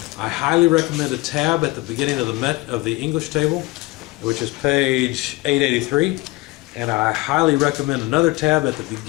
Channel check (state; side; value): quieter; right; 21.5 dB